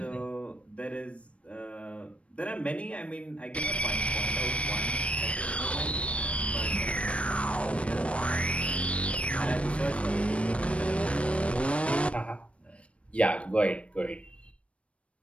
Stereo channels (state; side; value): late; right; 0.062 ms